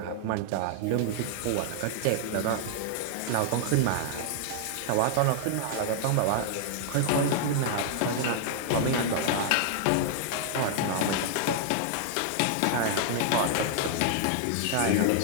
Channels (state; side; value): different; both; correlation 0.00